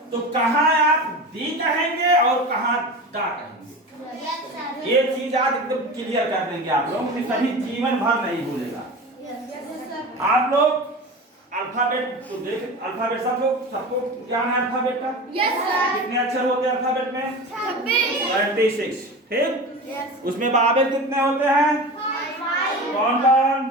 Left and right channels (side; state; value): both; normal; correlation 0.30